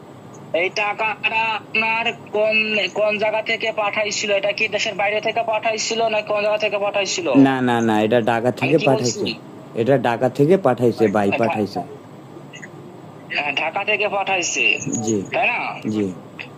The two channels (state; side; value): identical; both; correlation 1.00